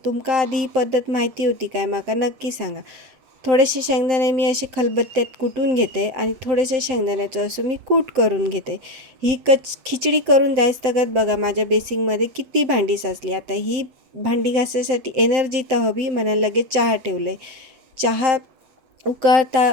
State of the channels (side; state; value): left; late; 7.7 ms